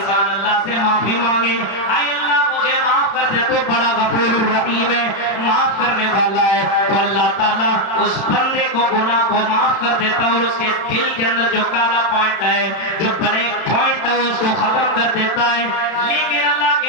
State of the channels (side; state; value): right; late; 32 ms